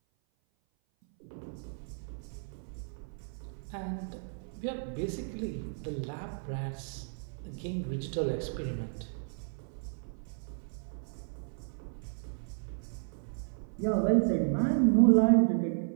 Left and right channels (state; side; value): silent; left; 56 dB below the other